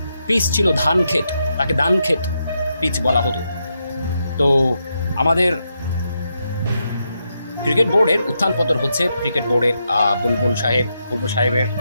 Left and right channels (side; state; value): both; inverted; correlation -0.83